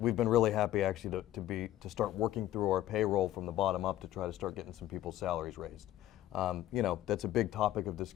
been really happy actually to start working through our payroll from the bottom up to try to start getting some people's salaries raised. You know, that's a big topic of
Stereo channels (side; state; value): right; quieter; 13.6 dB